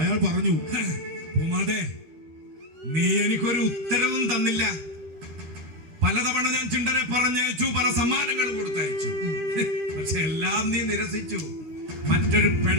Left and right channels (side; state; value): left; late; 13 ms